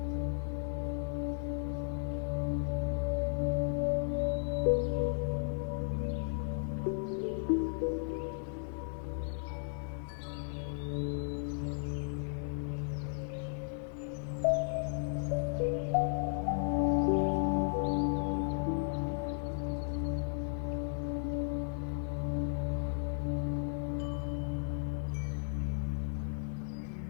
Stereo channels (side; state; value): right; silent; digital silence